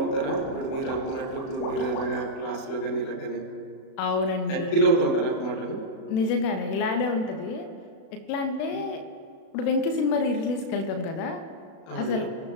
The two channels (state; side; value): late; right; 36 ms